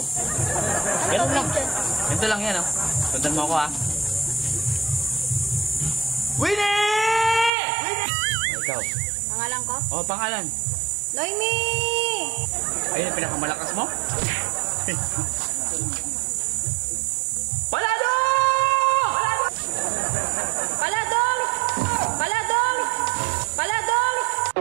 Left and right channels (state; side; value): drops out; left; at 7.5 s